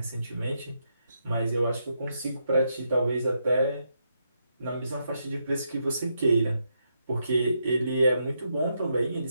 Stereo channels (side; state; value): both; inverted; correlation -0.81